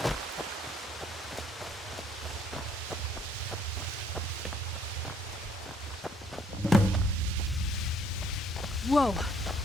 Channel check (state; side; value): normal; both; correlation 0.63